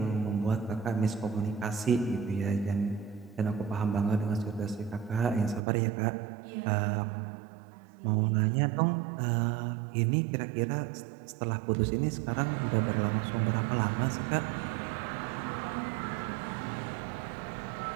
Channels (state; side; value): drops out; left; at 5.6 s